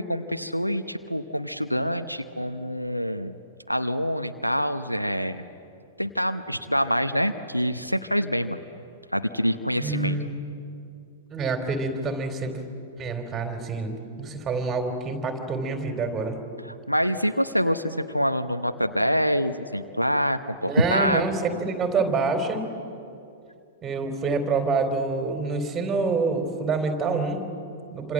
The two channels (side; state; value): both; inverted; correlation -0.37